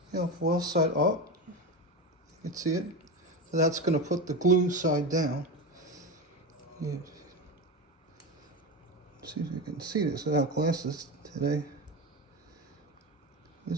Foil side up. You can see it. So that's going to put the glue side down. See if you can see this without glasses today.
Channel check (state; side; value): normal; both; correlation 0.20